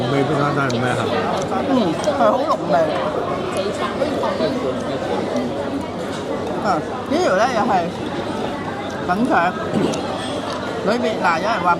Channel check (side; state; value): both; identical; correlation 1.00